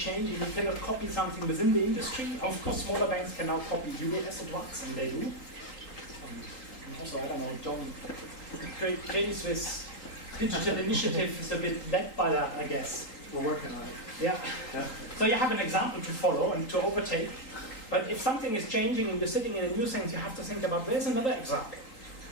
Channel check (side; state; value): right; late; 3.8 ms